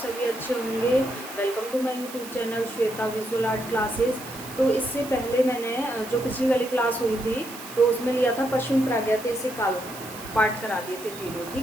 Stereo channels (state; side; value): noise; right; hiss, 14 dB below the sound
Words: अच्छे होंगे। Welcome to my YouTube channel Shweta visual art classes. तो इससे पहले मैंने जो पिछली वाली क्लास हुई थी तो उसमें लिया था पश्चिम प्रागैतिहासिक कालों पाठ करा दिए थे तीनों।